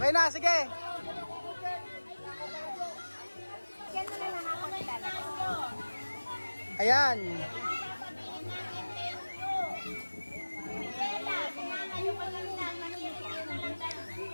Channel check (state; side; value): inverted; both; correlation -1.00